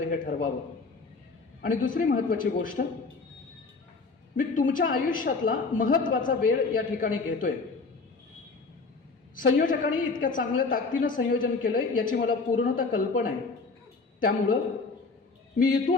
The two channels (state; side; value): quieter; right; 4.2 dB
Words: हे ठरवावं. आणि दुसरी महत्त्वाची गोष्ट, मी तुमच्या आयुष्यातला महत्त्वाचा वेळ या ठिकाणी घेतोय. संयोजकांनी इतक्या चांगल्या ताकदीनं संयोजन केलंय याची मला पूर्णतः कल्पना आहे. त्यामुळं मी